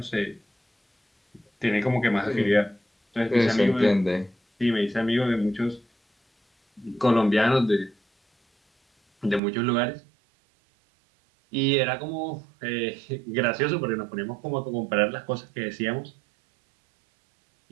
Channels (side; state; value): left; drops out; at 9.4 s